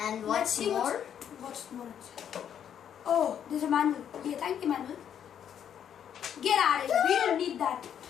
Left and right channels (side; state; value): right; quieter; 9.0 dB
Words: what's more? What's more inside? Oh, there's a manual. Yeah, thank you, manual. Get out of here. We don't need that.